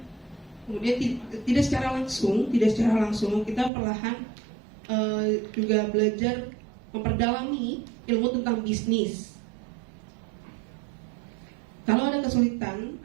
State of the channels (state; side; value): drops out; left; at 3.7 s